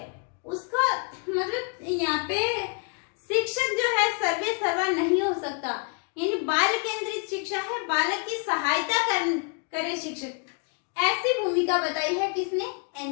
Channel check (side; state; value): right; quieter; 37.0 dB